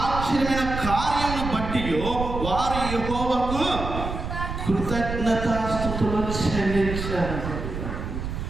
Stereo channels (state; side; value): noise; right; rumble, 5 dB below the sound